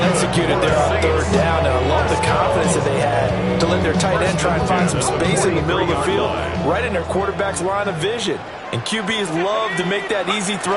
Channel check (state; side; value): identical; both; correlation 1.00